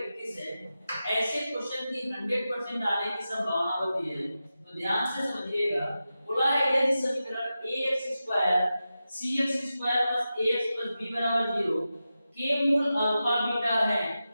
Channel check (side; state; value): both; inverted; correlation -0.92